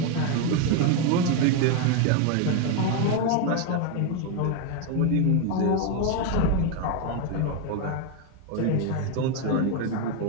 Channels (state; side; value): different; both; correlation 0.02